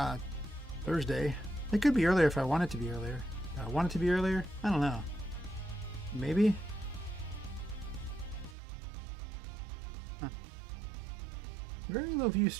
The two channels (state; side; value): drops out; left; at 8.6 s